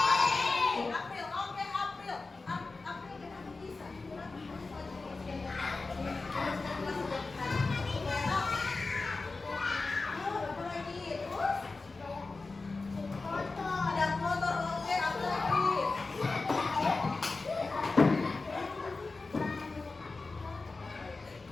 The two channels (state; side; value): quieter; right; 3.7 dB